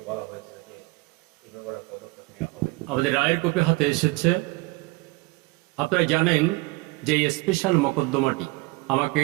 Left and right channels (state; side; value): quieter; left; 23.3 dB